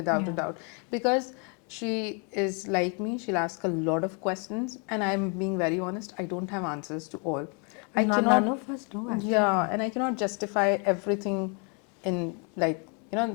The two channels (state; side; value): quieter; right; 35.7 dB